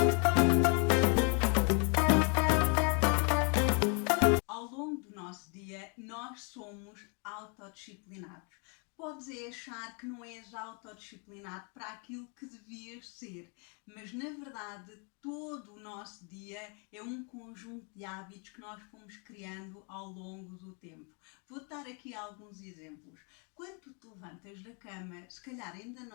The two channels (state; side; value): quieter; right; 36.4 dB